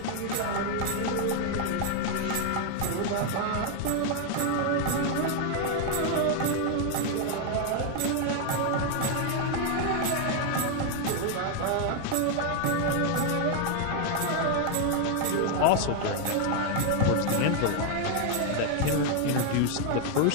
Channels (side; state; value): both; different; correlation 0.00